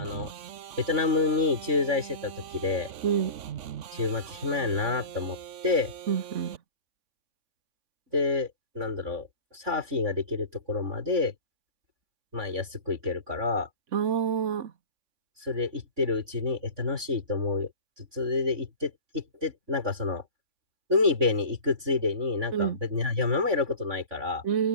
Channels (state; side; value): late; left; 3.5 ms